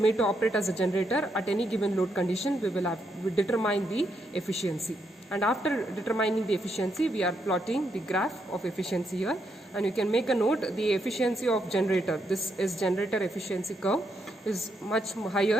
to operate as a generator at any given load condition, we will determine the efficiency. And after determining the efficiency, we are plotting the graph of efficiency here. And you can make a note, the efficiency of generator, this is generator efficiency curve, is much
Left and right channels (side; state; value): both; normal; correlation 0.79